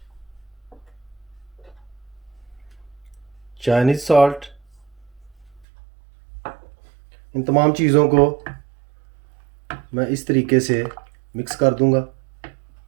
चाइनीज़ सॉल्ट, इन तमाम चीज़ों को मैं इस तरीके से मिक्स कर दूंगा।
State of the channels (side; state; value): left; drops out; at 5.7 s